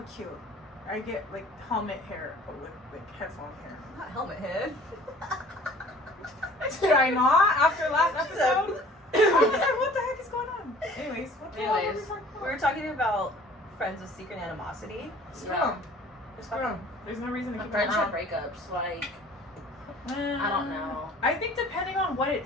cute. I get, like, helmet hair, but with, like, headphone hair. Not helmet head. Did I not? After last episode? I was like, what the heck is going on? Anyways, what the hell are we Anyways, talking We about? were talking about friends with secret animosity. Screw Yeah. them. Screw them. There's no reason to keep them Friendship around. breakups, like, I don't know. I think depending on what it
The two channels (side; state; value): both; normal; correlation 0.50